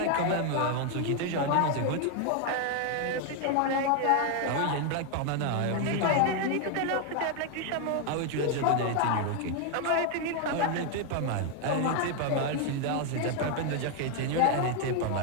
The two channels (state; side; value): different; both; correlation 0.01